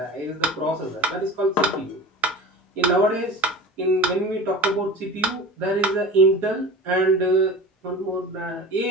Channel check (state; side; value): normal; both; correlation 0.35